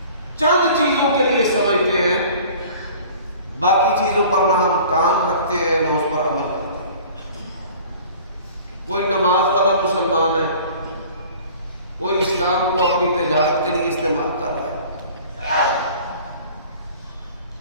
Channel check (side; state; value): both; inverted; correlation -0.46